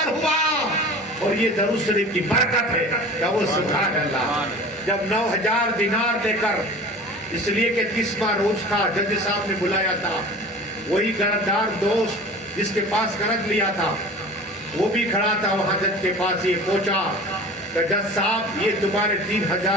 ہوا اور یہ درود شریف کی برکت ہے. کہو سبحان اللہ. جب 9000 دینار دے کر, اس لیے کہ 30واں روز تھا, جج صاحب نے بلایا تھا. وہی قرضدار دوست جس کے پاس قرض لیا تھا وہ بھی کھڑا تھا وہاں جج کے پاس. یہ پہنچا کہ جج صاحب یہ تمہارے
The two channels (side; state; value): both; normal; correlation 0.39